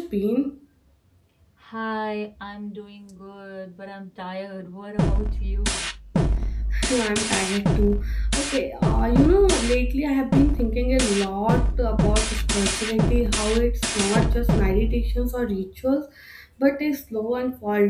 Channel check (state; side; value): identical; both; correlation 1.00